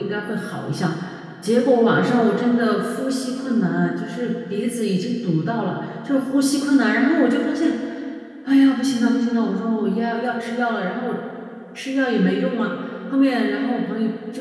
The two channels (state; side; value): identical; both; correlation 1.00